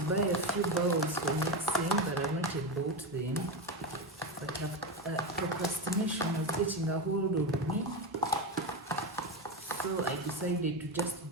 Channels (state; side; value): normal; both; correlation 0.15